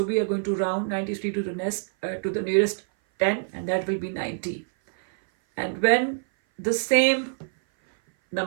we are going to round 93 to the nearest 10, and that will be 90. And when the same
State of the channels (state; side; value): silent; left; 58 dB below the other